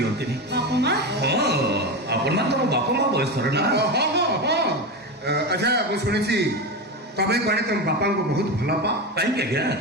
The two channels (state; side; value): normal; both; correlation 0.19